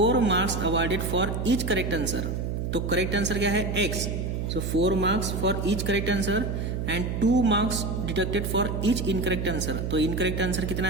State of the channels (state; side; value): noise; right; hum, 2 dB below the sound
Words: marks awarded for each correct answer. तो करेक्ट आंसर क्या है x, so 4 marks for each correct answer and 2 marks deducted for each incorrect answer. तो इनकरेक्ट आंसर कितना